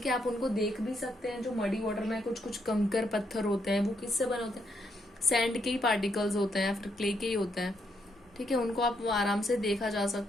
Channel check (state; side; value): normal; both; correlation 0.76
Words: है। आप उनको देख भी सकते हैं, जो मडी वाटर में कुछ कुछ कंकर पत्थर होते हैं, वो किससे बने होते हैं, सैंड के ही पार्टिकल्स होते हैं, फिर क्ले के ही होते हैं, ठीक है, उनको आप आराम से देखा जा